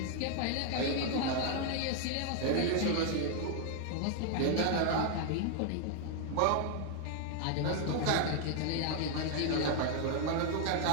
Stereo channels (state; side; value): different; both; correlation 0.00